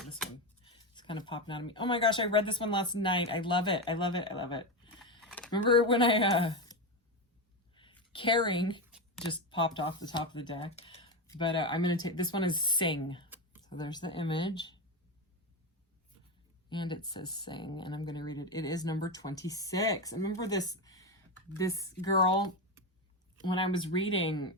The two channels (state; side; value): normal; both; correlation 0.14